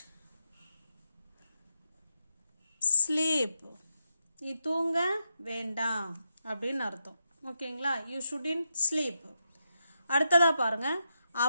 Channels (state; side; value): inverted; both; correlation -0.85